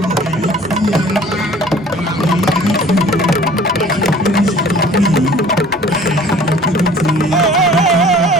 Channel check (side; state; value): both; normal; correlation 0.49